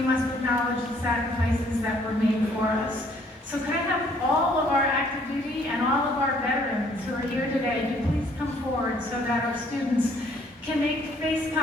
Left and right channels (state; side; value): normal; both; correlation 0.63